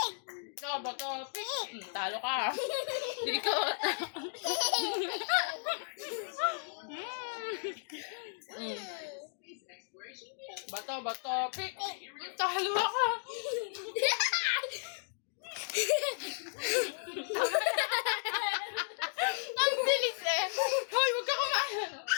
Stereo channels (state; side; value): silent; right; digital silence